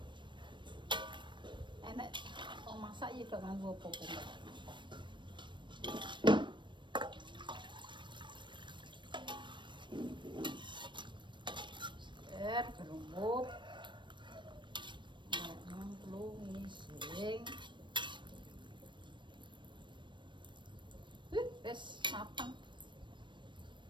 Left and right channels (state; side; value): late; left; 0.22 ms